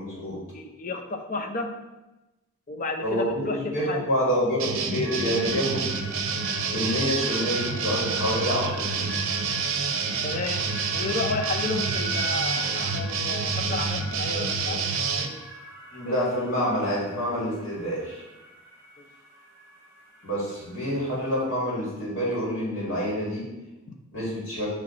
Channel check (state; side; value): normal; both; correlation 0.11